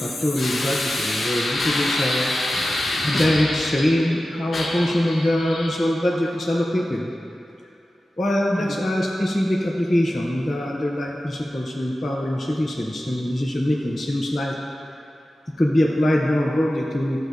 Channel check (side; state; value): both; normal; correlation 0.94